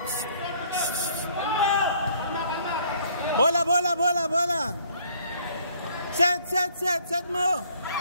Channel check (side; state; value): both; inverted; correlation -0.61